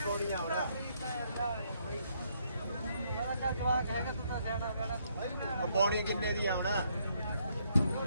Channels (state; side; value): inverted; both; correlation -0.72